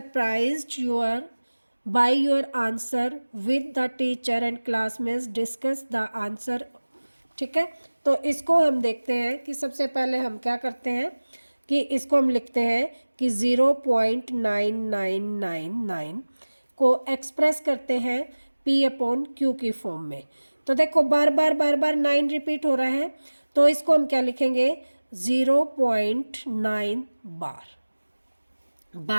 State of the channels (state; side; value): inverted; both; correlation -1.00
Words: by your answer with the teacher and classmates, discuss the answer। ठीक है, तो इसको हम देखते हैं कि सबसे पहले हम क्या करते हैं कि इसको हम लिखते हैं कि 0.9999 को एक्सप्रेस करते हैं p अपॉन q की फॉर्म में। तो देखो बार बार 9 रिपीट हो रहा है, तो इसको हम क्या लिखेंगे 0.9